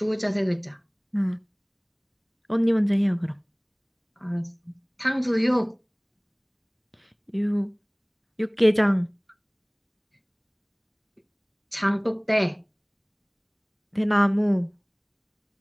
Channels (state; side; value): identical; both; correlation 1.00